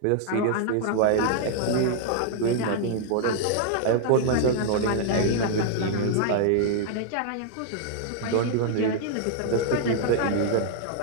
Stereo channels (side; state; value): both; different; correlation -0.01